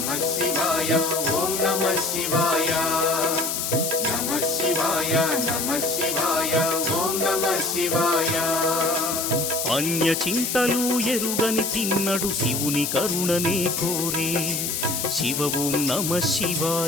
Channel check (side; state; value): left; noise; hiss, 1 dB below the sound